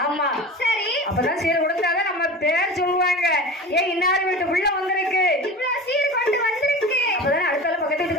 ஆமா, சரி. அப்பதான் சீர் கொடுத்தாதான் நம்ம பேர் சொல்லுவாங்க. ஏன் இன்னாரு வீட்டு புள்ள வந்திருக்கு, இவ்வளவு சீர் கொண்டு வந்திருக்கு, அப்பதான் அடுத்தால பக்கத்து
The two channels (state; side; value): normal; both; correlation 0.33